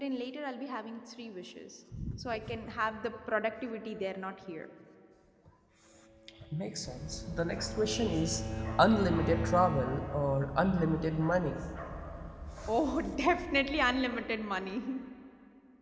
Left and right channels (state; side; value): identical; both; correlation 1.00